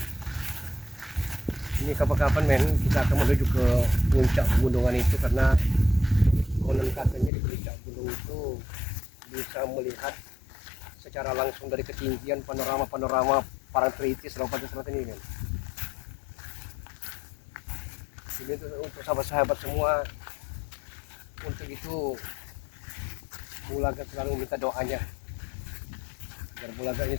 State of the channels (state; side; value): drops out; right; at 7.3 s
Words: Ini kapan-kapan, men, kita akan menuju ke puncak pegunungan itu, karena konon katanya di puncak gunung itu bisa melihat secara langsung dari ketinggian panorama Parangtritis Lompatan Selatan ini, men. Ini untuk sahabat-sahabat semua, untuk itu Bulaga selalu minta doanya agar Bulaga